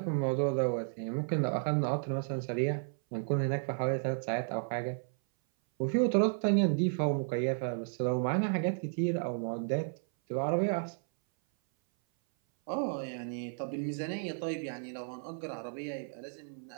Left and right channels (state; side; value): silent; left; 56 dB below the other